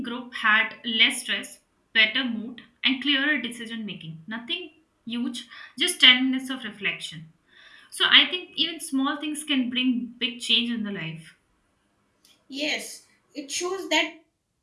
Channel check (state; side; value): identical; both; correlation 1.00